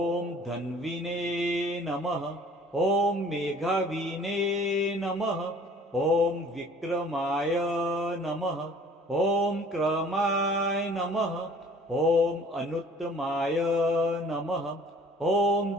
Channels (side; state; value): both; normal; correlation 0.52